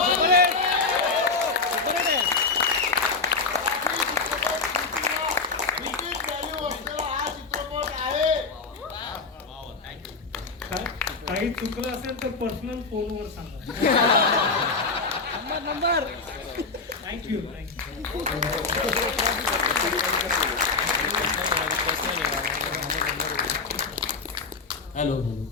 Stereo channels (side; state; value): right; quieter; 4.2 dB